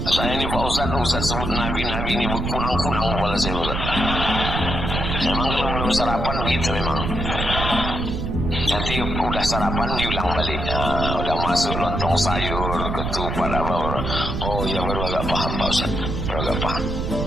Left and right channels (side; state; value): right; noise; rumble, 3 dB below the sound